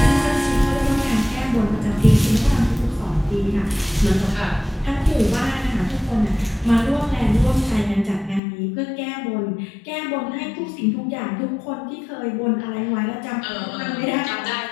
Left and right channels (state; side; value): drops out; right; at 8.4 s